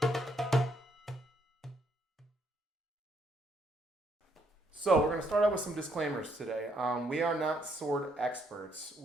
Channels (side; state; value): both; normal; correlation 0.72